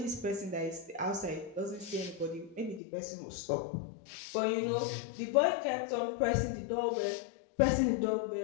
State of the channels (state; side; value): drops out; right; at 2.8 s